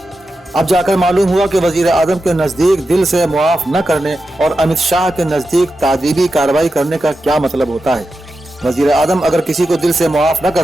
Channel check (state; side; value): normal; both; correlation 0.90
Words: अब जाकर मालूम हुआ कि वजीर आजम के नजदीक दिल से मुआफ न करने और अमित शाह के नजदीक तादीबी कार्रवाई करने का क्या मतलब होता है। वजीर आजम अगर किसी को दिल से मुआफ न कर